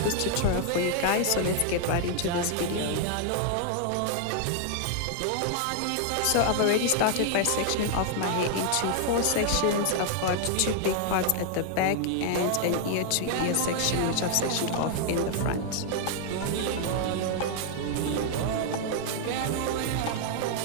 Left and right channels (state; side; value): different; both; correlation 0.00